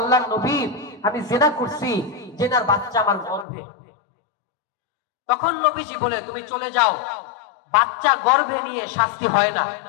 নবী, আমি জিনা করছি, জিনার বাচ্চা আমার গর্ভে। তখন নবীজি বলে, তুমি চলে যাও, বাচ্চা গর্ভে নিয়ে শাস্তি হয় না,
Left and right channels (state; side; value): drops out; right; at 3.5 s